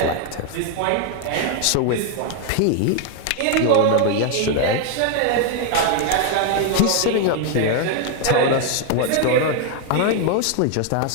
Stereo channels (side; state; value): both; different; correlation 0.00